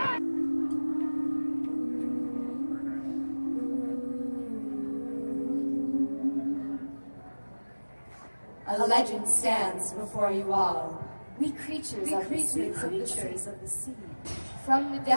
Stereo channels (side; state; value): both; inverted; correlation -1.00